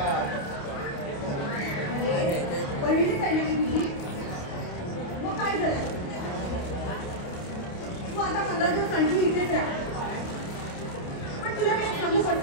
बहिणीच आहे ना तुझी, मग काय झालं? तू आता 15 दिवस कंटिन्यू इथेच राहा. पण तुला मी सांगू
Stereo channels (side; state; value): right; late; 28 ms